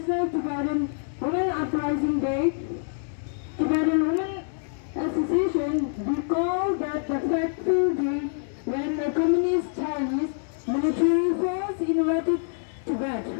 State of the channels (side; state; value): right; silent; digital silence